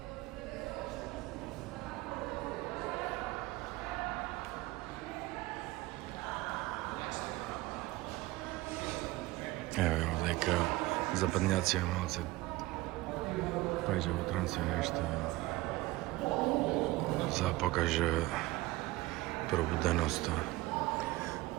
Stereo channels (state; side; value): quieter; left; 19.4 dB